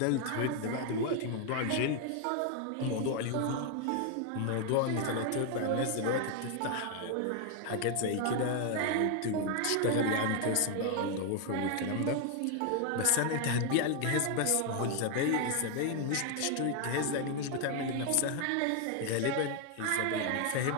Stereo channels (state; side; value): different; both; correlation 0.00